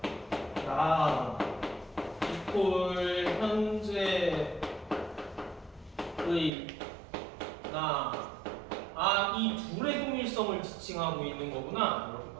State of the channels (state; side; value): drops out; left; at 6.5 s